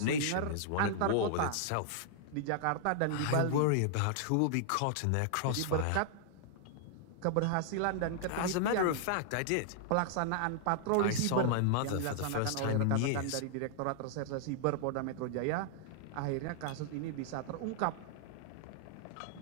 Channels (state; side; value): different; both; correlation -0.01